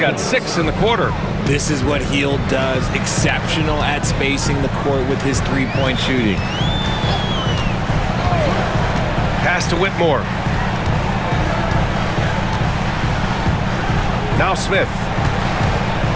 6 in the quarter. This is what Hield does. Exceptional at spacing the court with his three-point shooting. Pass to Whitmore. Now Smith.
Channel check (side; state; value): both; identical; correlation 1.00